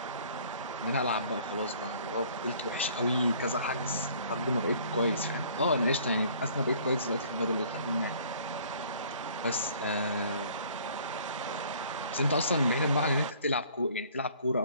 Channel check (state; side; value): inverted; both; correlation -0.55